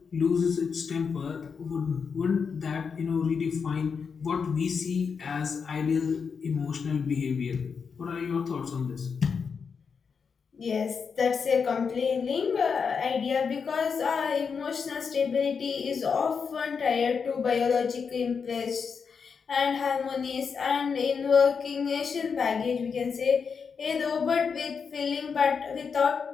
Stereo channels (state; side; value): quieter; right; 5.9 dB